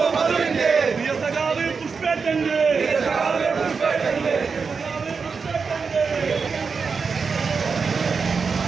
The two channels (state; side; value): quieter; left; 5.2 dB